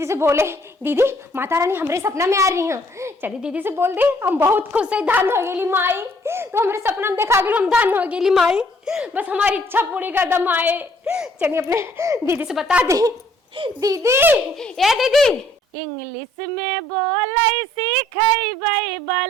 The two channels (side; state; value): both; normal; correlation 0.63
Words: से बोले, दीदी माता रानी हमरे सपना में आ रही हैं। चली दीदी से बोल दे, हम बहुत खुश है, धन हो गेली माई, तो हमरे सपना में देखा गेल, हम धन हो गेली माई, बस हमारी इच्छा पूरी कर दम आए। चलिए अपने दीदी से बता दी। दीदी, ए दीदी, इंग्लिश में बोलै सीखैबै